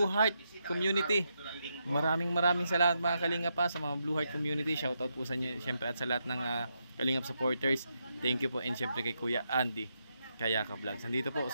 Heart community. Maraming salamat mga kalingap pa sa mga Blue Heart community. Shoutout po sa inyo syempre at sa lahat ng kalingap supporters. Thank you po, and syempre kay Kuya Andy Kayakap Vlogs. Nandito po.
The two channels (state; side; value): inverted; both; correlation -0.83